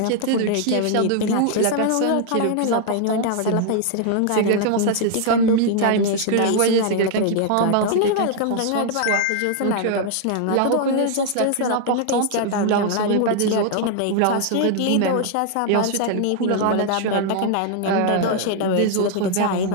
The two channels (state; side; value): different; both; correlation 0.00